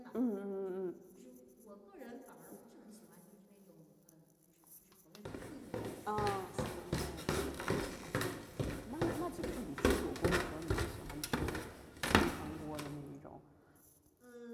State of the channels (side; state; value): both; identical; correlation 1.00